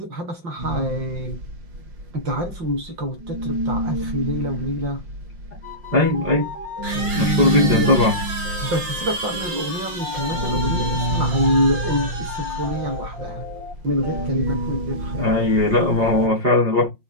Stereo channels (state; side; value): late; left; 5.6 ms